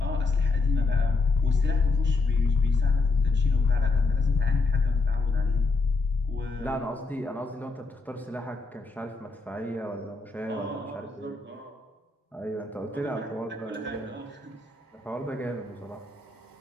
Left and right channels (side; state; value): right; quieter; 3.8 dB